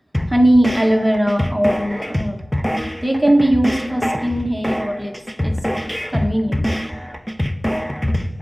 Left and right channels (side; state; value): both; normal; correlation 0.98